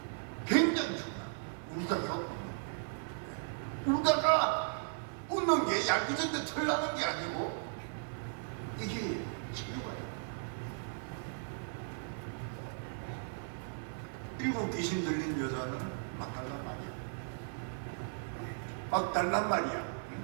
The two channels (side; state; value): left; silent; 53 dB below the other